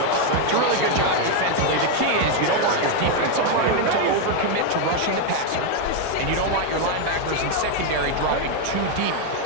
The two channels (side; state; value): both; different; correlation 0.01